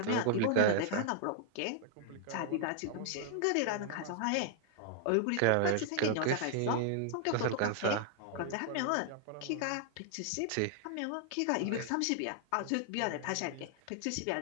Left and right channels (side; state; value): both; different; correlation 0.00